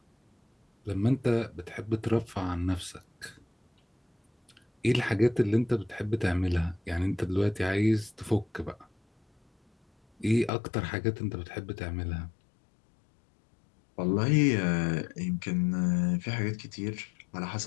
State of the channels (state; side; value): drops out; right; at 10.5 s